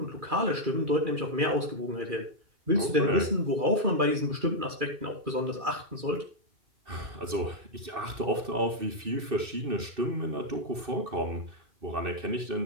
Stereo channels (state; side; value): late; left; 2.6 ms